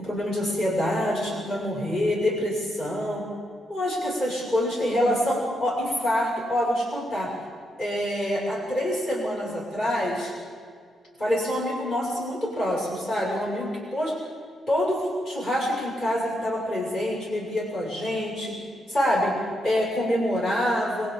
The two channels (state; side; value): normal; both; correlation 0.80